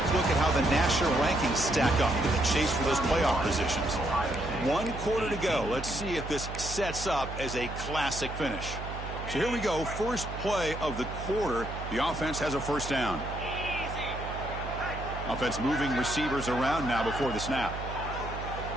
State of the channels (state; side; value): noise; right; hum, 8 dB below the sound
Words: look at how the national rankings stack up in the chase for those playoff positions. 1 quarter to go. Let's see if this sets up as a classic finish. So here we go. First play of the quarter. The offense has a first down. Offense moving receivers around now before the snap.